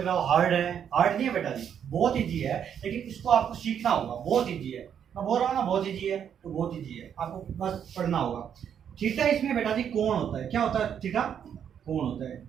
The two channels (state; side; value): quieter; left; 8.5 dB